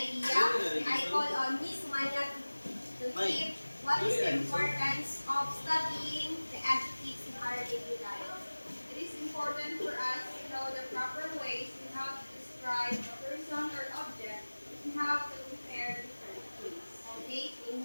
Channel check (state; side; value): inverted; both; correlation -1.00